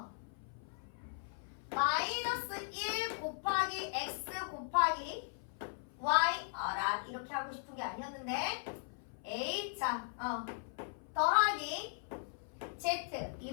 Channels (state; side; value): silent; right; 52 dB below the other